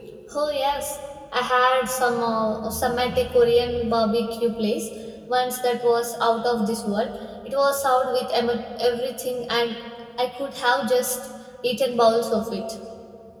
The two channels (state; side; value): identical; both; correlation 1.00